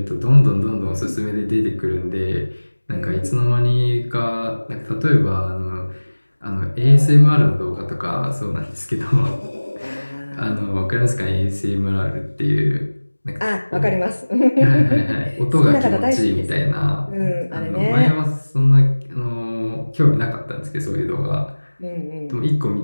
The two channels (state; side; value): inverted; both; correlation -1.00